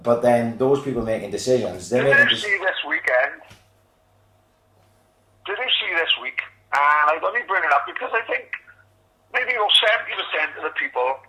But then those people making decisions, Did you see this weekend? Did you see this week? And I only bring it up because I think maybe 70% of the people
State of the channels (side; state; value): both; identical; correlation 1.00